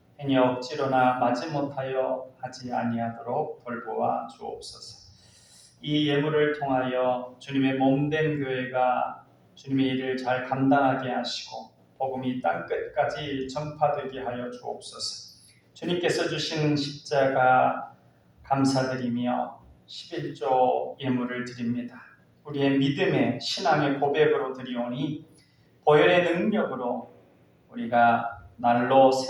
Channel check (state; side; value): identical; both; correlation 1.00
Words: 행여 억지로나 마지못하여 하지 아니하도록 돌보아 주옵소서. 이 예물을 통하여 주님의 몸된 교회가 주님의 일을 잘 감당하게 하시고 복음이 땅끝까지 전파되게 하여 주옵소서. 주님께서 주신 십자가 감사드리며 11조 예물을 드립니다. 우리의 믿음의 신앙의 고백으로 드리오니 보혈의 능력으로 우리가 날로